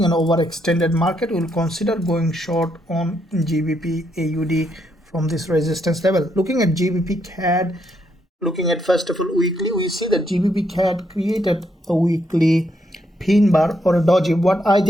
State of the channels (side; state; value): both; normal; correlation 0.76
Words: an overextended market, we will consider going short on GBPAUD from this resistance level. Looking at GBPCAD, looking at first of all weekly, we see that GBPCAD created a weekly pin bar or a doji. What I